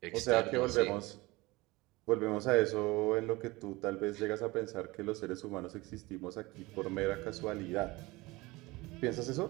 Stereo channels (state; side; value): quieter; left; 21.8 dB